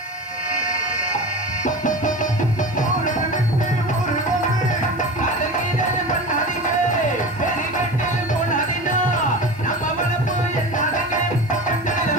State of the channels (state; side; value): noise; left; hiss, 29 dB below the sound